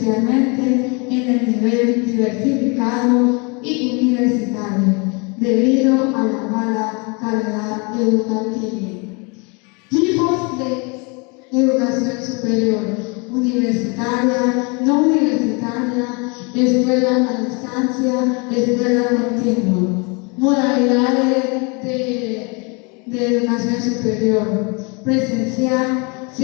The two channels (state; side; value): quieter; right; 31.3 dB